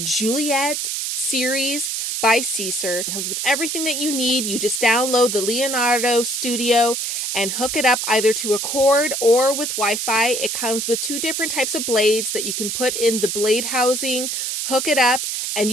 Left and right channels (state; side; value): noise; right; hiss, 2 dB below the sound